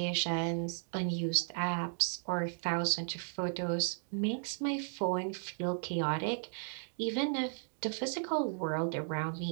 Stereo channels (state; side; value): silent; left; digital silence